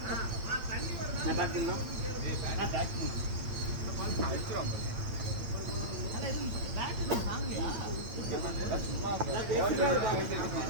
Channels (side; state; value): left; late; 8.8 ms